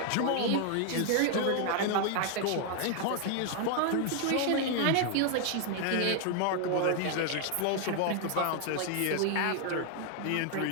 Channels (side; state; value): both; different; correlation 0.00